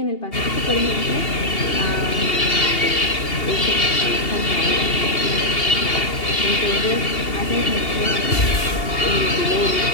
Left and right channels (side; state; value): right; late; 2.8 ms